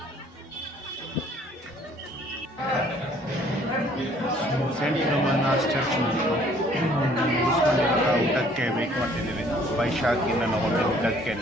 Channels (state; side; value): normal; both; correlation 0.59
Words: ಸೇಂಟ್ ಫಿಲೋಮಿನಾಸ್ ಚರ್ಚ್ ಮುಗಿಸ್ಕೊಂಡು ಊಟಕ್ಕೆ ವೇಟ್ ಮಾಡ್ತಿದ್ದೀವಿ. ವೈಶಾಖಿ ನನ್ನ ಹೋಟೆಲ್ ಊಟಕ್ಕೆ